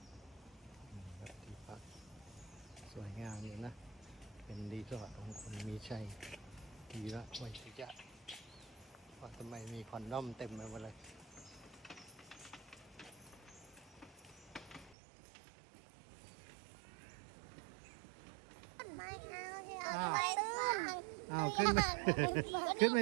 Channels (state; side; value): drops out; left; at 15.0 s